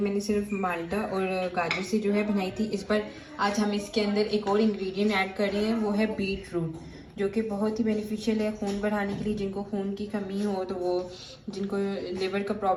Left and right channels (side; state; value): both; identical; correlation 1.00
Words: सिर्फ माल्टा और गाजर से जो है बनाई थी। इस पर आज हम इसके अंदर एक और इंग्रेडिएंट ऐड कर रहे हैं, वो है बीट रूट, जो कि बहुत ही बेनिफिशियल है खून बढ़ाने के लिए। जिनको खून की कमी हो, तो वो जिनको लिवर का